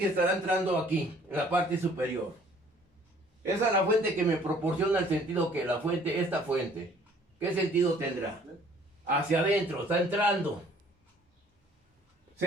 estará entrando aquí, en la parte superior? Esa es la fuente que me proporciona el sentido que esta fuente. ¿Qué sentido tendrá? Hacia adentro, está entrando.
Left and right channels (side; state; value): both; normal; correlation 0.56